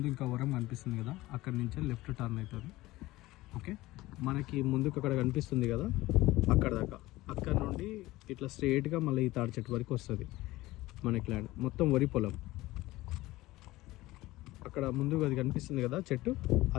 ఇంకా వరం కనిపిస్తుంది కదా, అక్కడ నుంచే లెఫ్ట్ టర్న్ అవుతుంది. ఓకే, మనకి ముందుకు అక్కడ కనిపిస్తుంది కదా, అక్కడ దాకా, అక్కడ నుండి ఇట్లా స్ట్రైట్గా మళ్ళీ ఈ తాడి చెట్టు వరకు వస్తుంది మనకి ల్యాండ్. మొత్తం వరి పొలం. అక్కడ ముందుకు అది కనిపిస్తుంది కదా చెట్టు, ఆ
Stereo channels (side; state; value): right; quieter; 18.3 dB